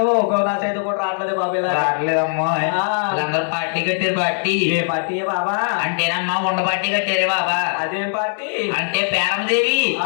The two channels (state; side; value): silent; right; 64 dB below the other